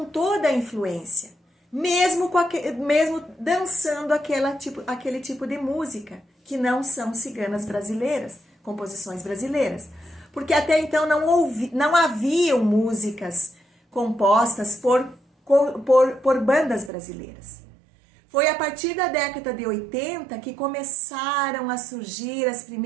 toda a influência, mesmo dançando aquele tipo de música, que não são ciganas brasileiras, composições brasileiras. Porque até então não haviam músicas compostas por bandas brasileiras. Foi a partir da década de 80 que começaram a surgir as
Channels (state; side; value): drops out; left; at 16.9 s